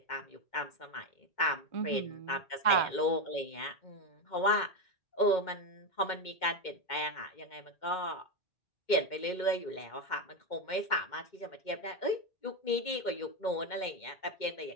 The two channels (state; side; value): late; right; 2.1 ms